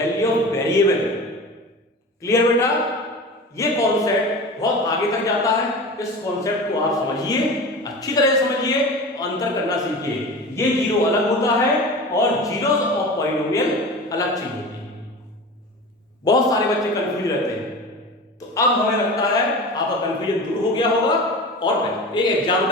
ऑफ वेरिएबल। क्लियर बेटा? ये कॉन्सेप्ट बहुत आगे तक जाता है। इस कॉन्सेप्ट को आप समझिए, अच्छी तरह से समझिए, अंतर करना सीखिए। ये जीरो अलग होता है और जीरोस ऑफ पॉलिनोमियल अलग चीज होती है। बहुत सारे बच्चे कंफ्यूज रहते हैं, तो अब हमें लगता है आपका कंफ्यूजन दूर हो गया होगा। और एक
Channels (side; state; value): both; normal; correlation 0.32